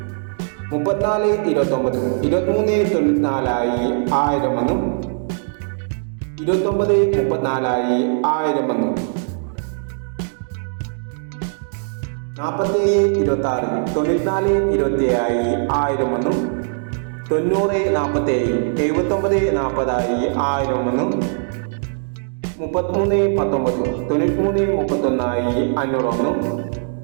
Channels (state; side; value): silent; left; digital silence